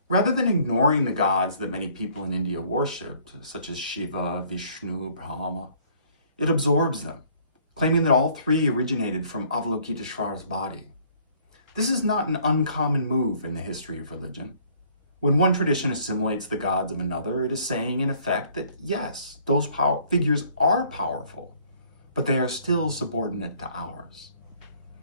Rather than ignoring the gods that many people in India worshipped, such as Shiva, Vishnu, Brahma, it absorbs them, claiming that all three originated from Avalokiteshvara's body. This is not an uncommon move in the history of religion. When one tradition assimilates the gods of another, it is saying, in effect, that yes, those figures are powerful, but they are still subordinate to ours.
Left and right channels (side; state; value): both; inverted; correlation -0.59